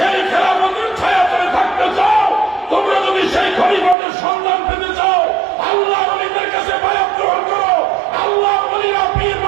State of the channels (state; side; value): drops out; left; at 4.0 s